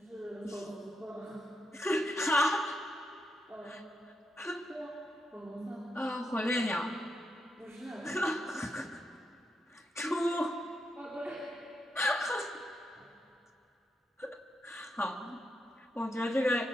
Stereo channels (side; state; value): both; normal; correlation 0.83